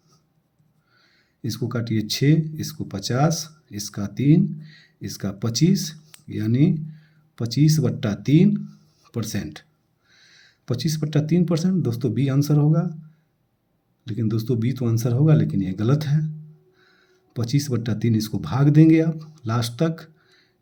इसको काटिए 6, इसको 50, इसका 3, इसका 25, यानी 25/3%। 25/3% दोस्तों बी आंसर होगा, लेकिन दोस्तों बी तो आंसर होगा लेकिन ये गलत है। 25/3 इसको भाग देंगे आप लास्ट तक,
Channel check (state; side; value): identical; both; correlation 1.00